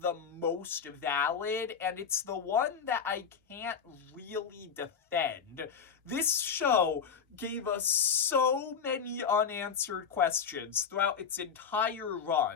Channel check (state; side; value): quieter; right; 6.8 dB